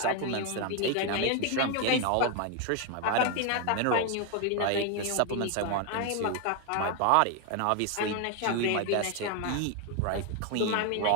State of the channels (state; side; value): different; both; correlation 0.01